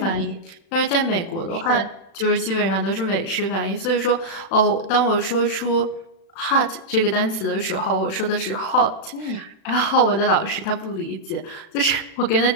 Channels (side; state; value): right; late; 36 ms